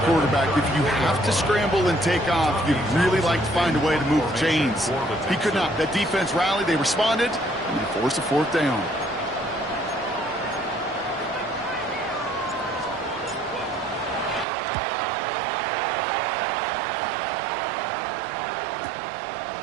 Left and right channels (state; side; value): drops out; left; at 14.5 s